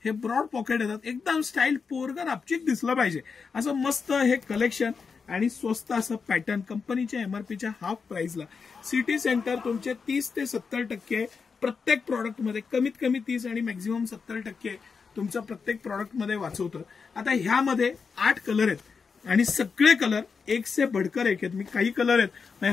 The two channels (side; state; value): right; quieter; 5.4 dB